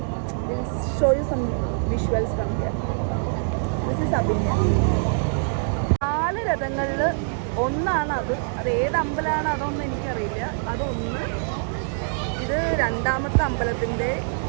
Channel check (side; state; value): left; silent; digital silence